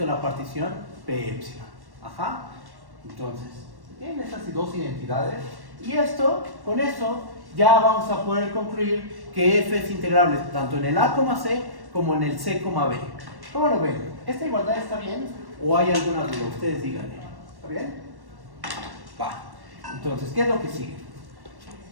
a la partición P epsilon. Ajá. Entonces, tienen esas dos identidades. Y con eso, ya vamos a poder concluir que F es integrable tanto en el A, C como en el C, B. ¿Cómo lo ven? ¿Esta igualdad está bien? ¿O hay alguna duda? Ustedes díganme. ¿Está bien? Va. Entonces, ¿qué es lo que sigue?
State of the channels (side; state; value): left; late; 1.1 ms